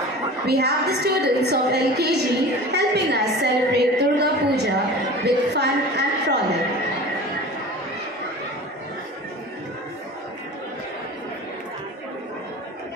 We have the students of LKG helping us celebrate Durga Puja with fun and frolic.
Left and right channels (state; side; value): normal; both; correlation 0.37